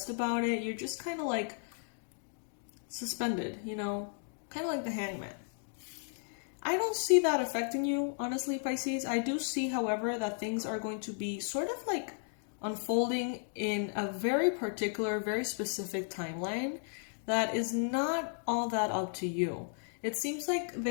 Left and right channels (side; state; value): right; silent; 55 dB below the other